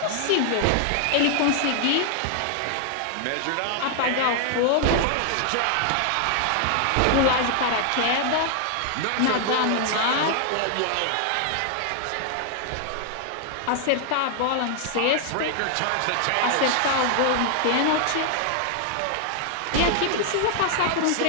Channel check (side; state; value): both; different; correlation 0.00